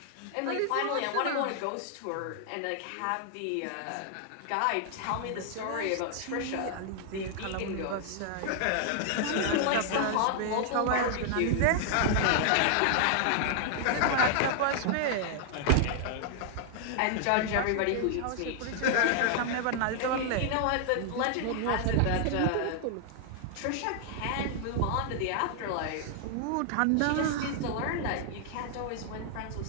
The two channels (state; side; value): different; both; correlation 0.00